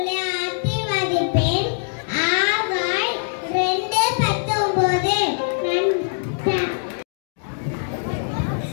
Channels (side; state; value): right; silent; digital silence